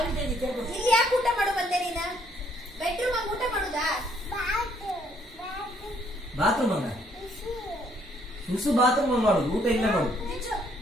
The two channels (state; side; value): normal; both; correlation 0.67